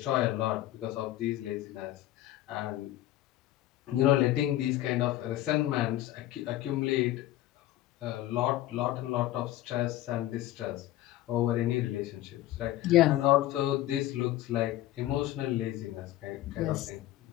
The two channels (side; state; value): right; quieter; 14.7 dB